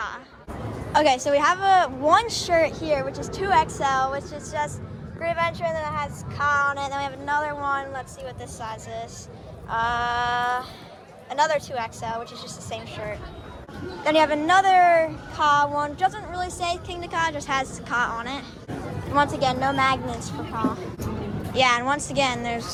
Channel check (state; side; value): identical; both; correlation 1.00